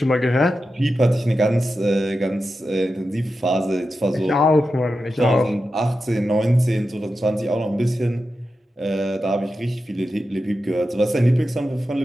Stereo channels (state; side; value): normal; both; correlation 0.91